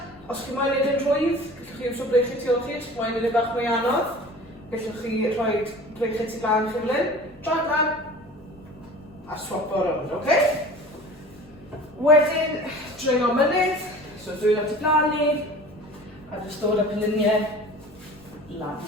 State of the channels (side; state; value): left; noise; rumble, 27 dB below the sound